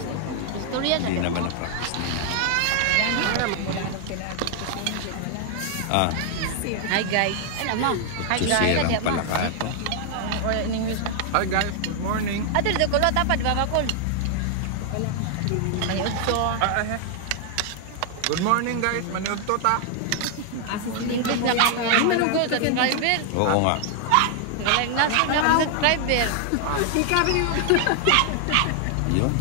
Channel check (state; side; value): different; both; correlation 0.00